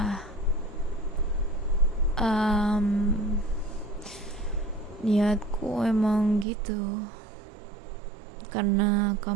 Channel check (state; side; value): drops out; left; at 6.5 s